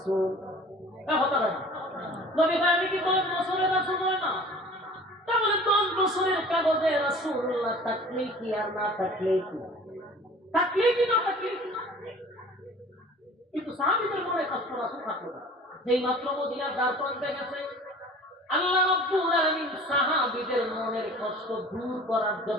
হতে পারে না। নবী ভাই আমি কি 10 বছরের রাসূল হয় না? তাহলে 10 বছরের কাগজে রাসূলুল্লাহ থাকলে কি আর না থাকলে কি? থাকলে কি না থাকলে কি? কিন্তু সাহাবীদের মনে কষ্ট রাসূল থাকলো না। যেই মাত্র মদিনার দ্বার প্রান্তে গেছে, আল্লাহ রাব্বুল আলামিন সাহাবীদের মনের কষ্ট দূর করার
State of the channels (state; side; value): normal; both; correlation 0.45